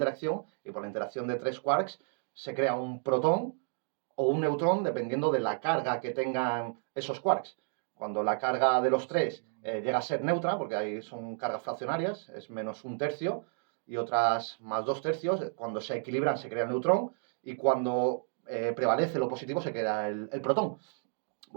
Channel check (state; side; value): silent; left; 57 dB below the other